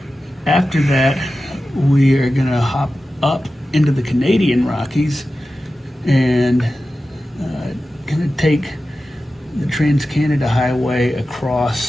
After that, we are going to hop up into the Canadian Rockies and going to take the Trans-Canada Highway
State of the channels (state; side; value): normal; both; correlation 0.94